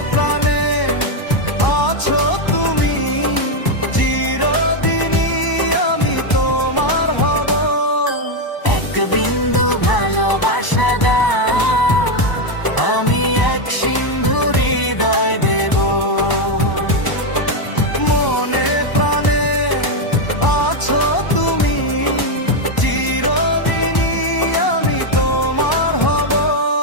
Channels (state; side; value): late; right; 1.0 ms